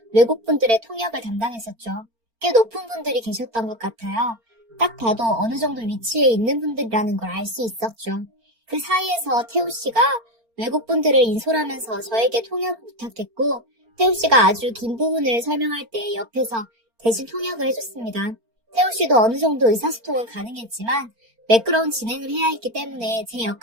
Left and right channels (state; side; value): late; left; 4.4 ms